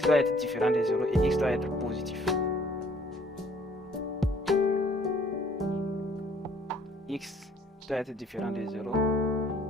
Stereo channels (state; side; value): normal; both; correlation 0.60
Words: doit être différent de 0 et x doit être positif. X doit être différent de 0